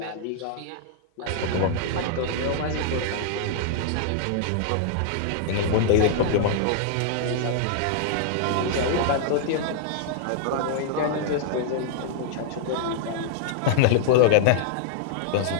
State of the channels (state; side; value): different; both; correlation -0.01